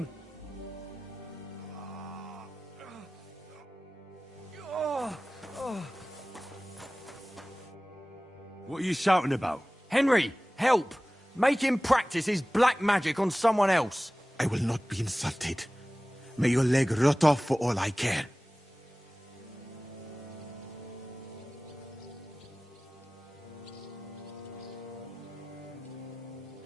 What are you shouting about? Henry, help! Make him practice his black magic on someone else. I will not be insulted. May your leg rot off for all I care.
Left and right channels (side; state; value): both; normal; correlation 0.97